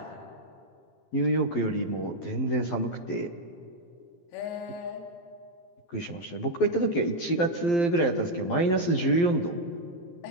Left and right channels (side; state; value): right; late; 12 ms